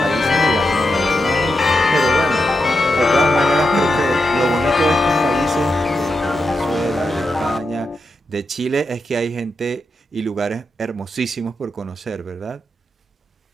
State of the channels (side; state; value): both; normal; correlation 0.87